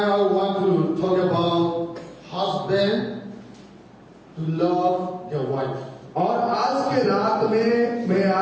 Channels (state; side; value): identical; both; correlation 1.00